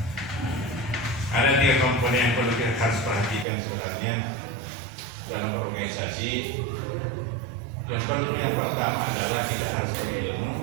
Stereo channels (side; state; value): left; drops out; at 3.5 s